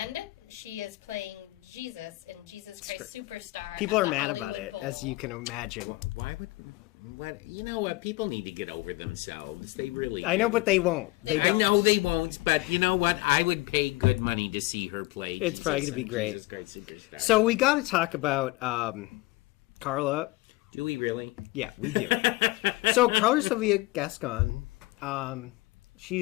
she is playing Jesus in Jesus Christ Superstar. People at are the mad Hollywood about it, Bowl. as you can imagine. Why would... What, you know what? People need to get over themselves. They really... I know, but they won't. I know they won't, but you know what? I would pay good money to see her play. It's probably going to be great. Jesus Christ Superstar. So we got to talk about Carla. Do we really? Yeah, we do. So Carla Sylvia Gascon,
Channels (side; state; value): right; quieter; 20.7 dB